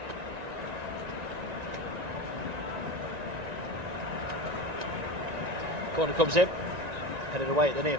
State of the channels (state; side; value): late; left; 1.9 ms